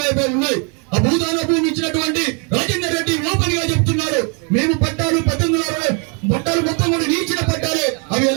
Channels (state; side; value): quieter; left; 36.2 dB